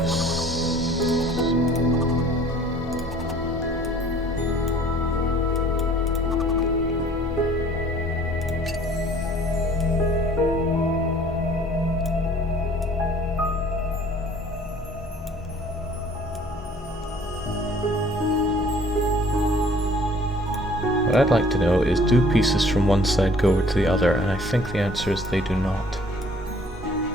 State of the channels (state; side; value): normal; both; correlation 0.53